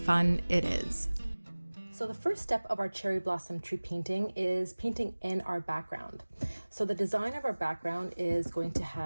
it is. So the first step of our cherry blossom tree painting is painting in our background. So the design of our background is going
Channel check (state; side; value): inverted; both; correlation -1.00